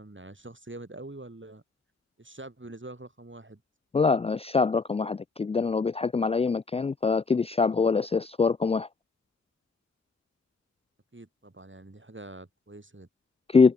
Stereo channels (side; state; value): right; quieter; 4.3 dB